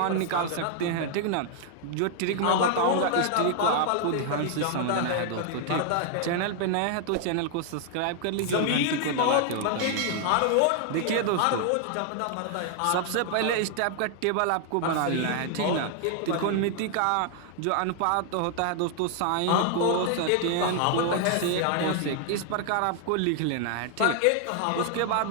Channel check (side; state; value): both; different; correlation 0.00